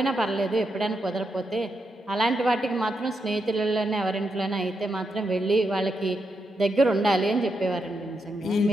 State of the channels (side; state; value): both; normal; correlation 0.84